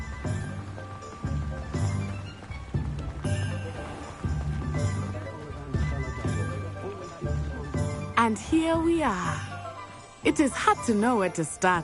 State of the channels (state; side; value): identical; both; correlation 1.00